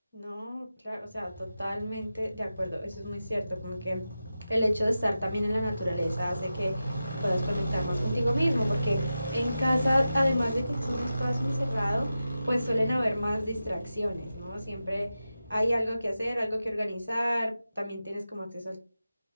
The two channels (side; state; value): both; inverted; correlation -0.92